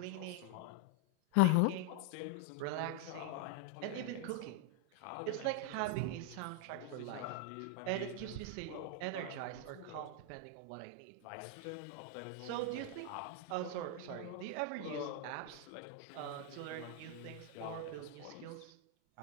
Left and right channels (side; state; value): both; different; correlation 0.01